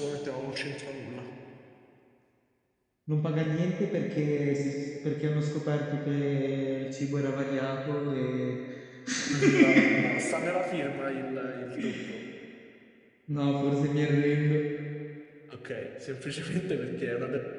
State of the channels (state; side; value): identical; both; correlation 1.00